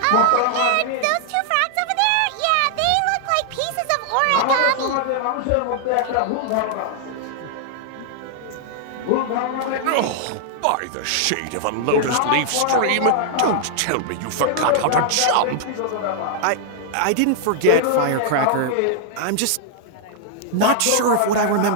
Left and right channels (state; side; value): different; both; correlation -0.01